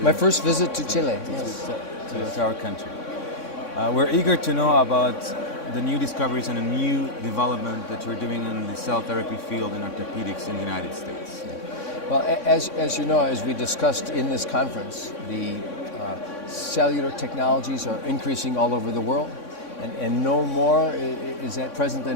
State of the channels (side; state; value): right; late; 3.6 ms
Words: first visit to Chile, yes. To our country. We're eager to know about the new discoveries and a new development that you're doing in the cell therapy field in orthopedics in the United States. Yeah. Well, as you know, as we discussed in this conference, the cellular technologies are increasing all over the world. And no more is at present